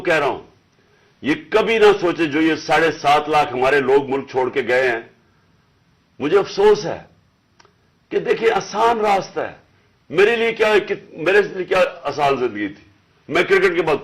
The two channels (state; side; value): identical; both; correlation 1.00